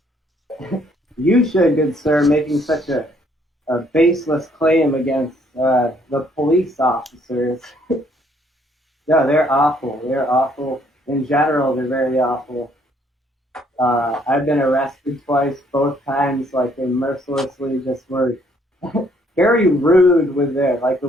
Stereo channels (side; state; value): both; normal; correlation 0.66